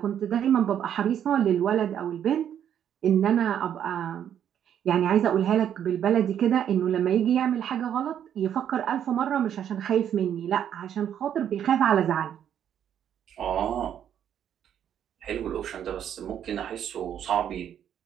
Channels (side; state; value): left; quieter; 9.5 dB